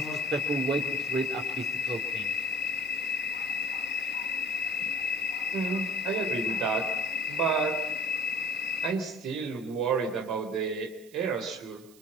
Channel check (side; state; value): right; noise; hiss, 25 dB below the sound